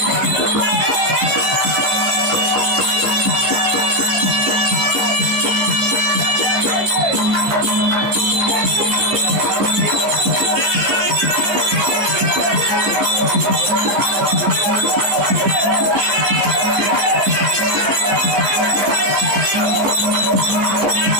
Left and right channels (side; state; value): left; late; 15 ms